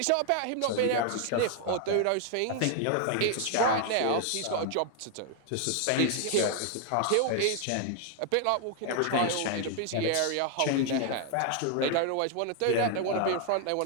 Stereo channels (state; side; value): different; both; correlation 0.00